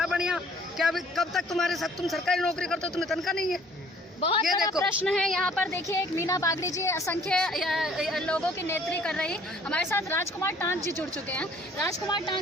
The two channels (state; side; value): normal; both; correlation 0.57